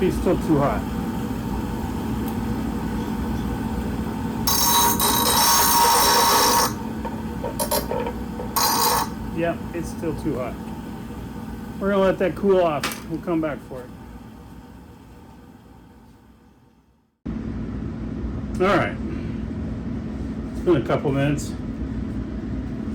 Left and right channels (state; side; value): identical; both; correlation 1.00